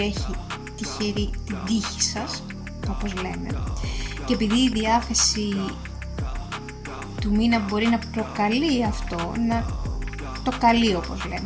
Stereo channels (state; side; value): identical; both; correlation 1.00